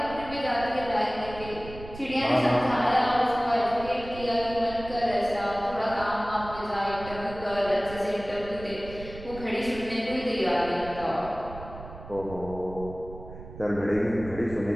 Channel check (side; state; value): right; noise; rumble, 14 dB below the sound